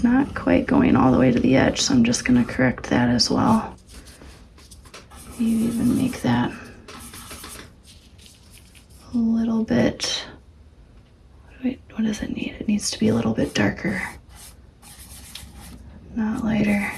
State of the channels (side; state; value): both; identical; correlation 1.00